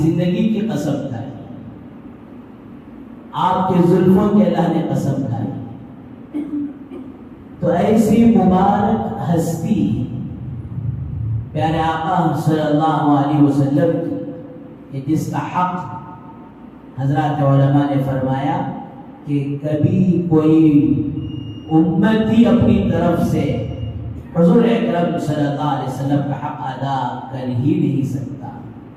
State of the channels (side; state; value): both; identical; correlation 1.00